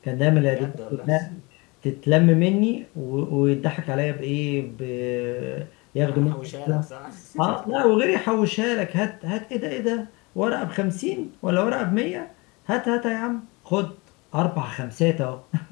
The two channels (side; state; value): right; quieter; 26.2 dB